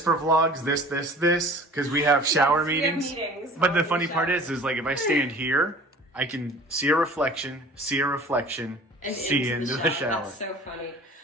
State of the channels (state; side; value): normal; both; correlation 0.45